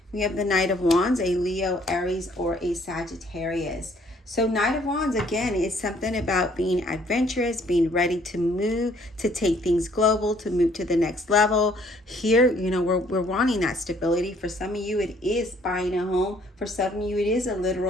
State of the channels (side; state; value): both; normal; correlation 0.62